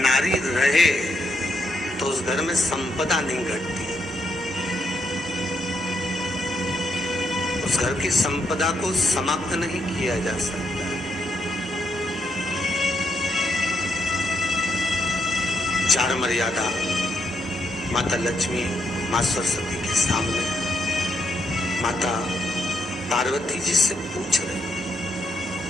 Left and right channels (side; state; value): both; normal; correlation 0.77